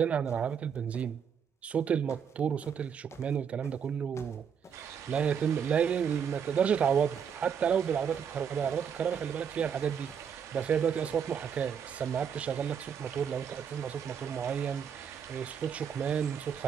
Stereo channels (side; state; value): left; quieter; 7.5 dB